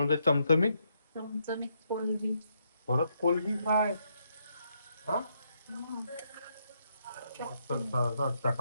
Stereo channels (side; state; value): both; inverted; correlation -0.77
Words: चमचमीत. चमचमीत कोलबी. परत कोलबी काय? हा, मस्त